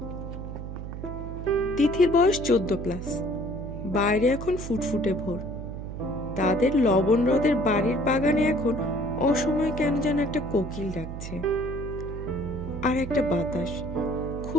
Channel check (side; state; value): right; noise; hum, 8 dB below the sound